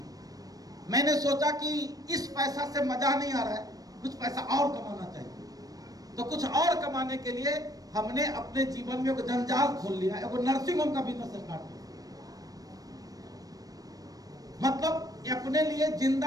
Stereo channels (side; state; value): left; late; 0.18 ms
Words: मैंने सोचा कि इस पैसा से मजा नहीं आ रहा है, कुछ पैसा और कमाना चाहिए। तो कुछ और कमाने के लिए हमने अपने जीवन में एक जंजाल खोल लिया, एक नर्सिंग होम का बिजनेस स्टार्ट किया। मतलब अपने लिए